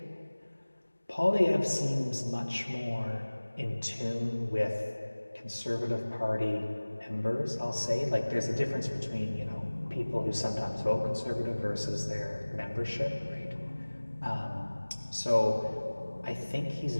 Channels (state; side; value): inverted; both; correlation -1.00